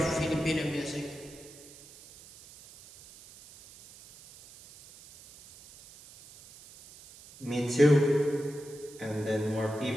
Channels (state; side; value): noise; right; hiss, 21 dB below the sound